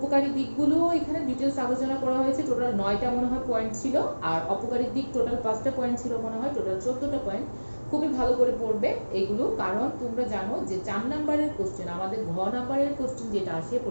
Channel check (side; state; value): both; inverted; correlation -1.00